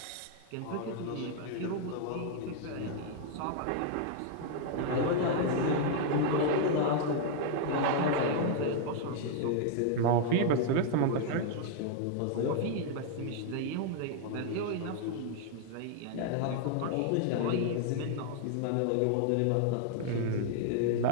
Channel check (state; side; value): different; both; correlation 0.00